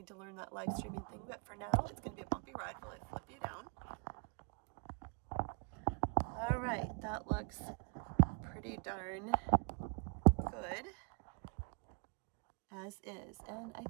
to learn that live streaming thing, but for now, it's going to be a bumpy ride while I flip you down. All right, that looks pretty darn good. As is, and I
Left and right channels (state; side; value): quieter; left; 39.0 dB